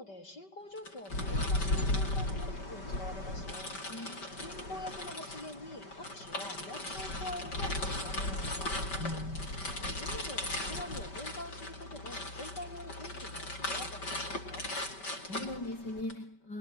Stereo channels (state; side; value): late; right; 5.2 ms